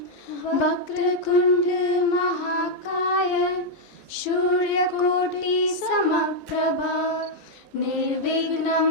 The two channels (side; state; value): both; normal; correlation -0.02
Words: वक्रतुंड महाकाय सूर्यकोटि समप्रभा निर्विघ्नं